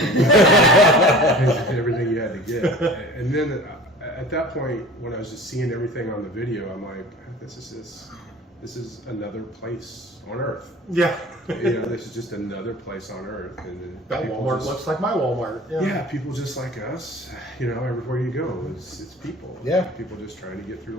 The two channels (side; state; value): both; normal; correlation 0.41